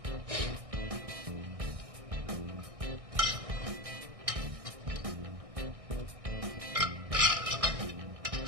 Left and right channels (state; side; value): late; left; 1.6 ms